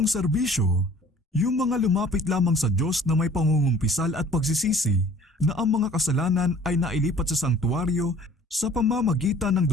serbisyo, yung mga lumapit lamang sa Diyos na may pangungumpisal at pagsisisi na ang mga kasalanan ay nailipat sa sanktuaryo sa pamamagitan ng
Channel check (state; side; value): normal; both; correlation 0.51